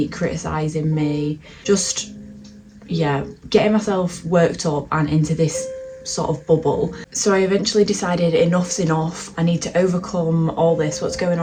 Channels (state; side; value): identical; both; correlation 1.00